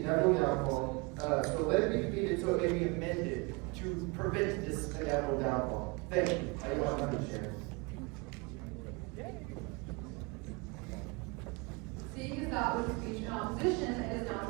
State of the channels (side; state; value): left; quieter; 28.5 dB